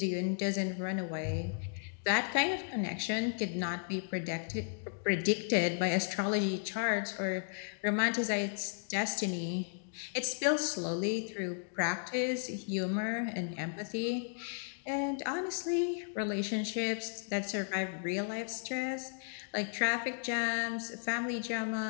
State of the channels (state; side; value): silent; right; digital silence